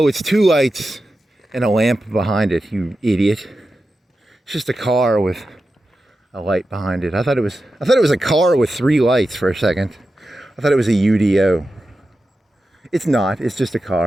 it's two lights and a lamp behind it, you idiot. It's just a car with a light behind it. I thought it was a car with three lights for a second. I thought it was a UDO. It's not, it's just a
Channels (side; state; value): both; normal; correlation 0.92